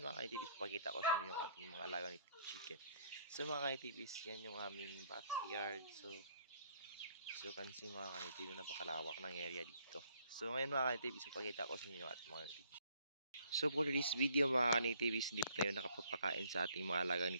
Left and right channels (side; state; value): both; inverted; correlation -0.64